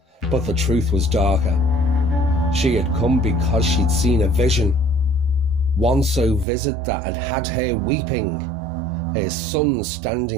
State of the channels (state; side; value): drops out; left; at 6.5 s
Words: But the truth was darker. She had come because she'd seen a vision, one so vivid that had had her weeping, her son